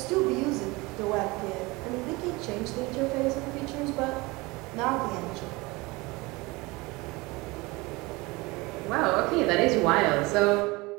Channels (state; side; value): quieter; left; 23.4 dB